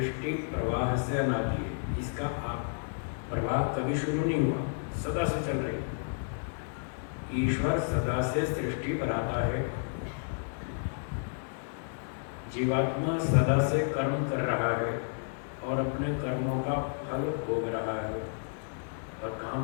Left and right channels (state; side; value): silent; right; digital silence